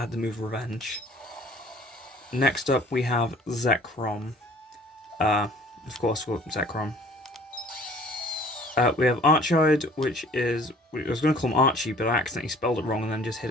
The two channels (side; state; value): both; normal; correlation 0.52